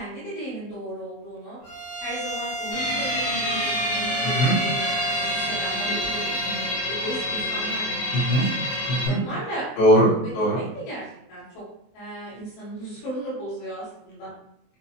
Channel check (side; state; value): right; late; 23 ms